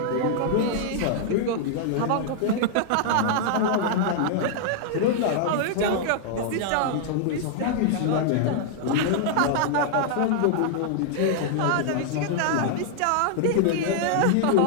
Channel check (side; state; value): both; different; correlation -0.01